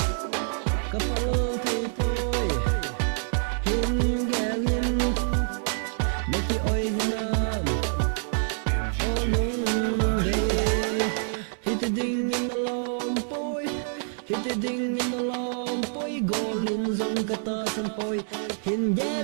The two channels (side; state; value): left; silent; 60 dB below the other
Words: Kapal thầy poi Hin galin Na ki oi hinam O lung day Hiti ding in the long poi Hiti ding in the long poi Golin zong kata san poi Hin